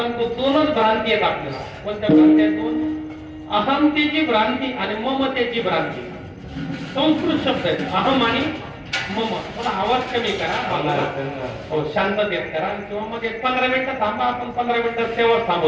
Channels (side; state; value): both; identical; correlation 1.00